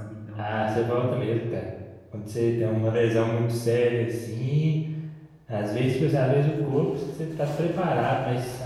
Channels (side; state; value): both; identical; correlation 1.00